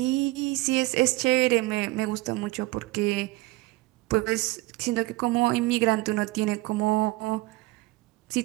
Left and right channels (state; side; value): quieter; left; 20.8 dB